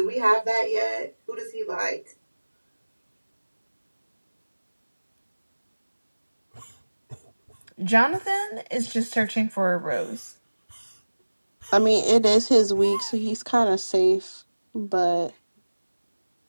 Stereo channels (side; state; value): both; inverted; correlation -1.00